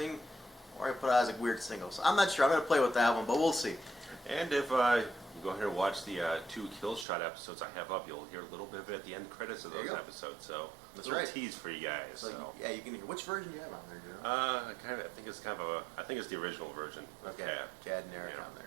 or I put it as a weird single. So I'm not sure. I'm going to play with that one, but we'll see. And if you go ahead and watch the 2 Kill Shot episodes I have up, you'll hear a little bit of it at the end credits of those episodes. So that's a little tease for you guys. So yeah, you can hear. Which version do you have on there, Joe? I think it's the original version. Okay, Chad and Eric on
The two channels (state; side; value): drops out; left; at 7.1 s